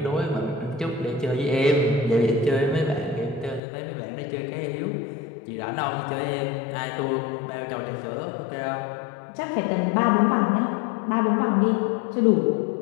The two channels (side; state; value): right; drops out; at 3.6 s